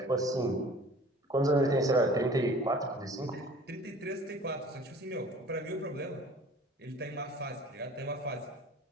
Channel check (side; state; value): both; normal; correlation 0.47